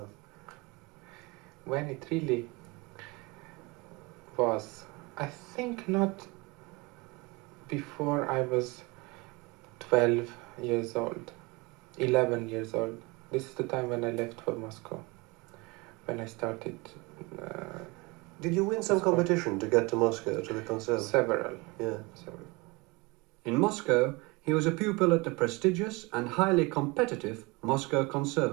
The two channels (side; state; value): left; quieter; 25.4 dB